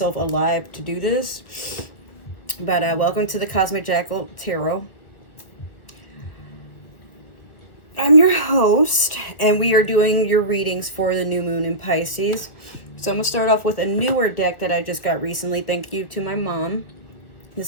alive to do this. But welcome to the Cosmic Jackal Tarot. I'm your host, and we are doing your readings for the new moon in Pisces. So I'm going to start off with a newer deck that I just got recently. Thank you to my mom.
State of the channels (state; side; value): late; right; 1.6 ms